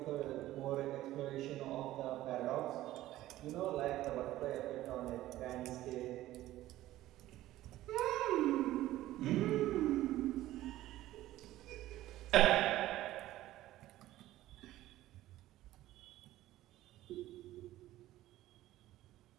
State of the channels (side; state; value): left; quieter; 15.2 dB